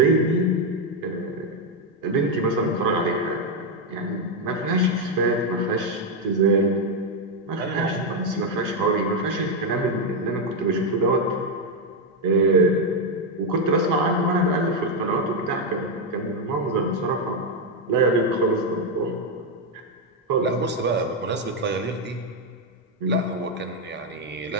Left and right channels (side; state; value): both; normal; correlation 0.03